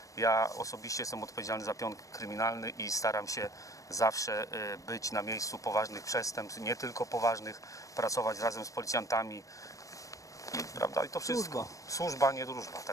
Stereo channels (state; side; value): late; right; 0.16 ms